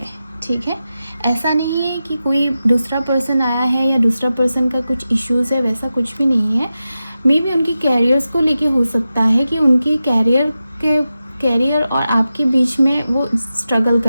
ठीक है। ऐसा नहीं है कि कोई दूसरा पर्सन आया है या दूसरा पर्सन का कुछ इश्यूज़ है, वैसा कुछ भी नहीं है। मे बी उनकी कैरियर्स को लेके हो सकता है कि उनके कैरियर और आपके बीच में वो स्ट्रगल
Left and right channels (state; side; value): inverted; both; correlation -0.92